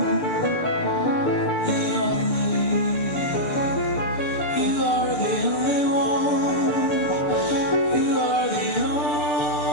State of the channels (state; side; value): late; right; 6.8 ms